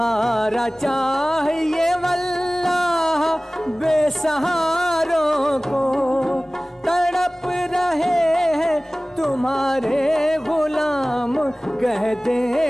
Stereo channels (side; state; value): both; normal; correlation 0.98